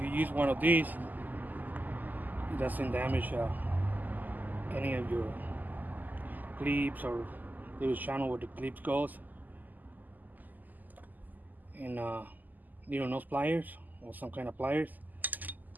you use one of these, it doesn't damage any of your clips or little channel where the clips goes. And little nose pliers or some kind of pliers,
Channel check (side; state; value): left; late; 0.084 ms